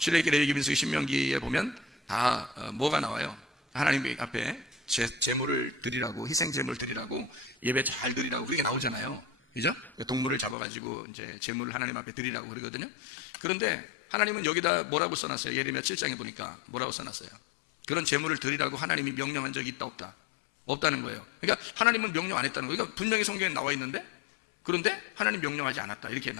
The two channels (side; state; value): right; drops out; at 10.6 s